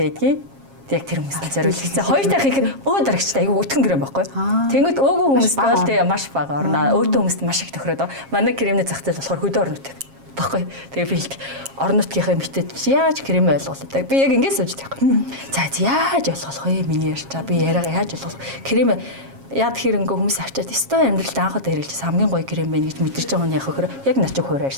байдгийг яг тэр хүмүүст зориулсан. Хоёр дахь их дарагчтай айгүй өтгөн крем байхгүй. Тэнгүүд өөгүй хүмүүст бол тэгээ маш бага орно. Өөртөө хүмүүст маш их тохироод манай кремний зах зээл болохоор хөдөө орнууд баггүй. Тэгээ би орон нутгийнхаа эмэгтэйд яаж крем ойлгуулдаг. Би яг ингэж сууж байхгүй. За яаж ойлгох вэ? Миний ярьчаа. Би яриага яаж ойлгох. Крем яад хэрэнгээ хүмүүс авчаад өстой амьдралд анх удаа хэрэглэжсэн хамгийн гоё крем байна гэж мэдэрч байгаа нь яг хөхөр яг начиг хуваар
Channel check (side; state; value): left; late; 7.4 ms